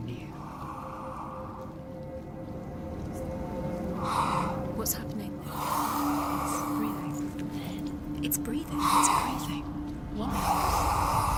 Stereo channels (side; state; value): both; identical; correlation 1.00